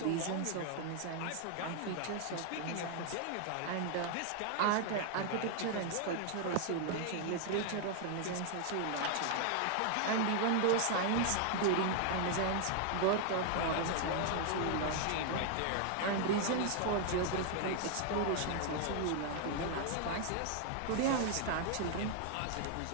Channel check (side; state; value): both; different; correlation 0.00